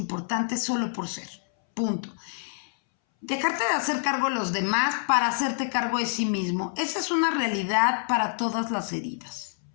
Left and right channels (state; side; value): silent; right; 60 dB below the other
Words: solo por ser. Punto. Dejarte de hacer cargo de los demás para hacerte cargo de sí mismo. Esa es una realidad para todas las heridas.